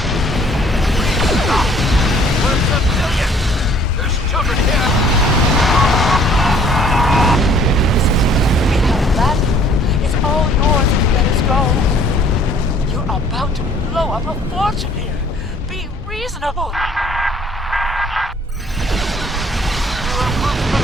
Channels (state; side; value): normal; both; correlation 0.58